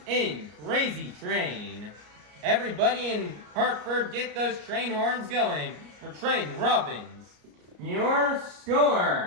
in Crazy Train. Everybody in Hartford, get those train horns going for Triton Robbins. Your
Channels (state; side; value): late; left; 34 ms